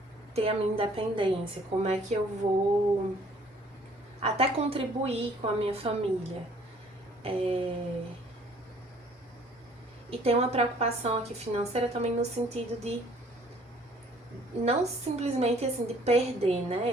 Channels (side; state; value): both; normal; correlation 0.58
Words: ter a minha independência? Como é que eu vou até contribuir com a minha família? E tem uma preocupação aqui financeira também no sentido de não simplesmente assim de perder,